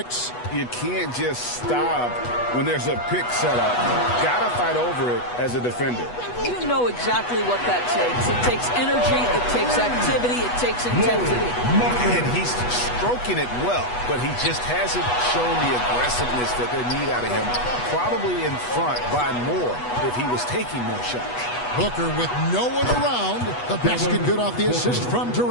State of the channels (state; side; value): late; right; 8.2 ms